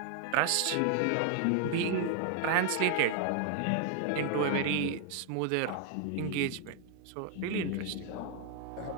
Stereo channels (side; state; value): both; different; correlation 0.00